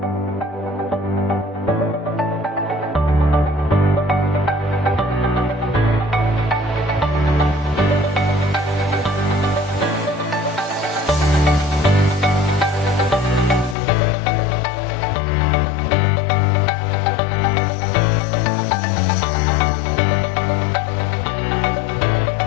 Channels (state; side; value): drops out; right; at 13.8 s